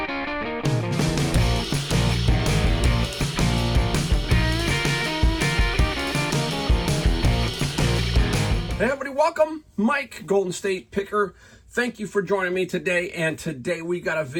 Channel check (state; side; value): identical; both; correlation 1.00